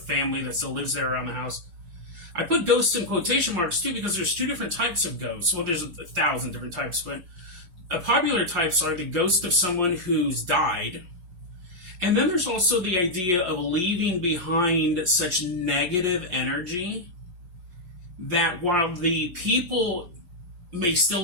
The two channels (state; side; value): late; left; 5.7 ms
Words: that still lives there around the house. I put ghosts in quotation marks too because there's 2 different types of ghosts. Well, there's 1,000 different types, but popular types are the ghost of someone who's died. And then there's also the idea of leaving behind such negative energy that while the people may